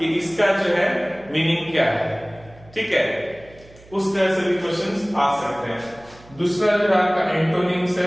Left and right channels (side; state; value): right; noise; hum, 24 dB below the sound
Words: इसका जो है मीनिंग क्या है, ठीक है। उस तरह से भी क्वेश्चंस आ सकते हैं। दूसरा जो आपका एंटोनिम्स